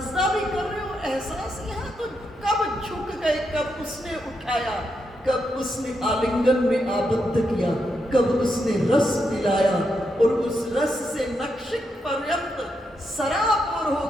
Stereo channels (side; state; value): both; normal; correlation 0.82